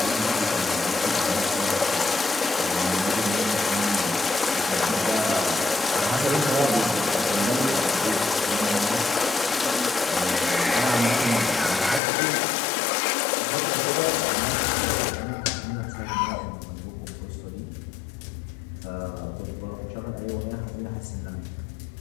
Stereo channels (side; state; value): right; drops out; at 12.0 s